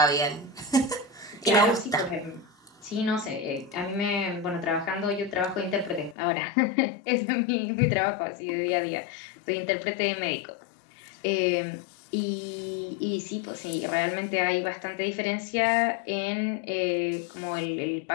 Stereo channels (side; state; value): right; drops out; at 6.2 s